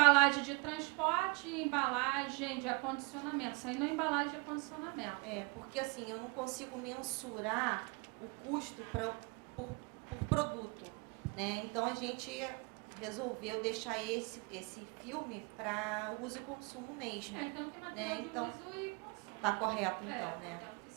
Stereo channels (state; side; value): quieter; left; 30.8 dB